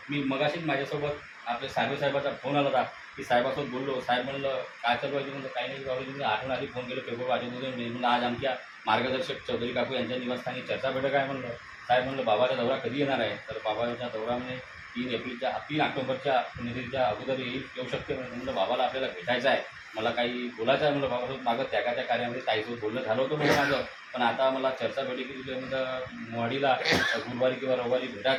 मी मगाशीच माझ्यासोबत आपल्या साहेबाचा फोन आला होता की साहेबासोबत बोललो. साहेब म्हणलं काय चालू आहे, म्हणलं काही नाही बाबा, तुम्ही आठवण आली, फोन केलं, पेपर वाजवून म्हणलं आज आमच्या मार्गदर्शक चौधरी काकू यांच्या निवासस्थानी चर्चा बैठक आहे. म्हणलं साहेब म्हणलं बाबाचा दौरा कधी येणार आहे, तर बाबाचा दौरा म्हणजे 3 ऑक्टोबरच्या पुण्यतिथीच्या अगोदर येऊ शकते. म्हणलं बाबाला आपल्याला भेटायचं आहे, मला काही बोलायचं आहे. म्हणलं बाबासोबत मागं त्यागाच्या कार्यामध्ये ताईसोबत बोलणं झालं होतं म्हणलं माझं, पण आता मला चर्चा बैठकीत म्हणलं मोहाडीला गुरुवारी किंवा रविवारी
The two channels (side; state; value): both; identical; correlation 1.00